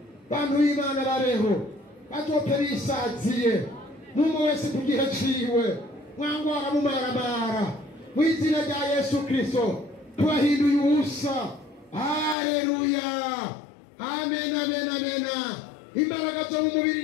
bantu b'Imana babeho bazote bisaziye n'umwe wese ku gihe ciwe mwangwara mumaramara mu izina rya Yesu Kristo tubahinduye ubusa haleluya amen amen amen imbaraga zo mu mubiri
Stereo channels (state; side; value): drops out; right; at 12.4 s